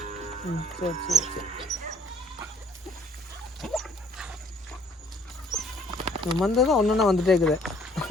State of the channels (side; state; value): both; normal; correlation 0.60